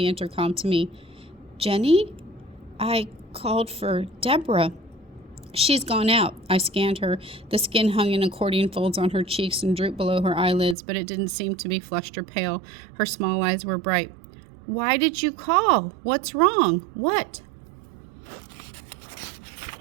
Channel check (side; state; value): left; drops out; at 10.8 s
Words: intercom to me. "Jenny? I called for Deborah." "She's gone out." I scanned her. The skin hung in accordion folds on her cheeks and drooped below her eyelids, but it didn't seem to be flushed or pale. Her small eyes were bright. "Why did you call? What's wrong? What?"